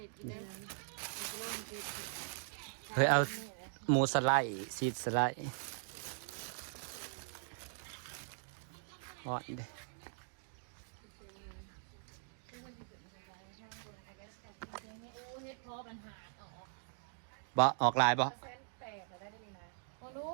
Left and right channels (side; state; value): left; silent; digital silence